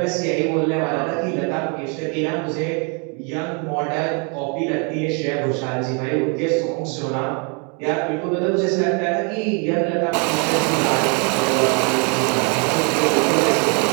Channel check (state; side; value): quieter; left; 36.0 dB